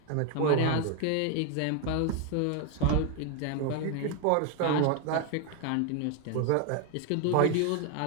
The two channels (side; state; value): both; different; correlation 0.01